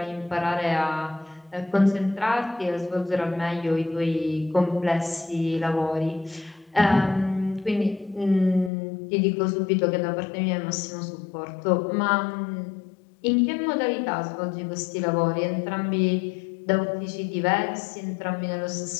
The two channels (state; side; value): drops out; right; at 8.7 s